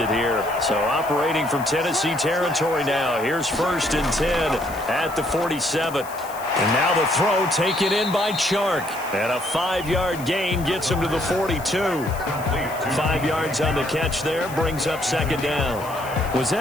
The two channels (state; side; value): noise; left; hiss, 17 dB below the sound